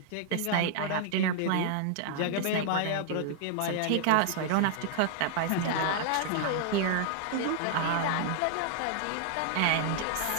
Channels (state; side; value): different; both; correlation 0.00